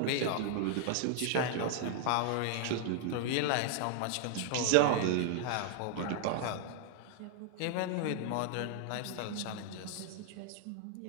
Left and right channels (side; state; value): both; different; correlation 0.00